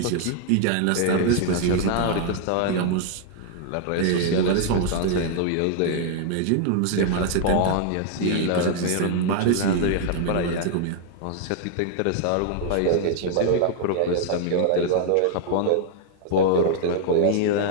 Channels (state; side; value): different; both; correlation 0.00